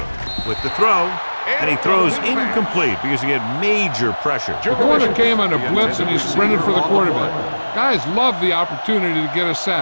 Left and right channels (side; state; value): both; inverted; correlation -1.00